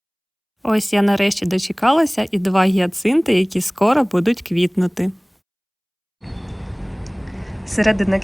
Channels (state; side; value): identical; both; correlation 1.00